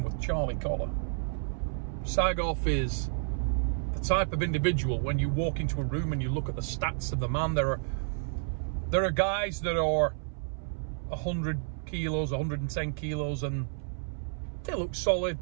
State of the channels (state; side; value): silent; left; 57 dB below the other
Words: with Charlie Collar. Sagov is the type of individual, when you walk into a room and you look at the stats of the man, there are guys that are 100 kilos, 110 kilos, and they look solid,